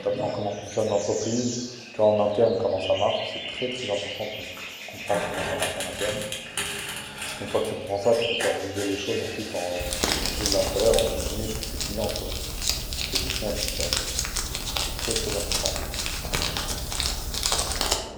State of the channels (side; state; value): both; identical; correlation 1.00